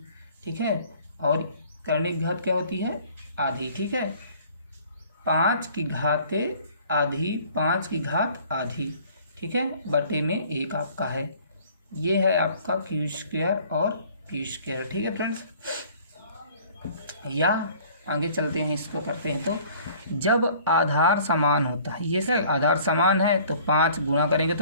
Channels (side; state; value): both; inverted; correlation -0.53